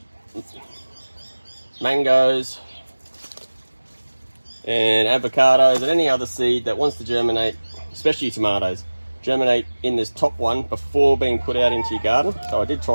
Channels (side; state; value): both; inverted; correlation -1.00